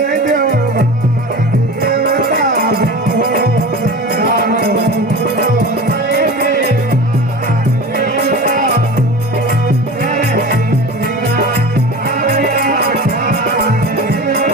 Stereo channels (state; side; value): normal; both; correlation 0.32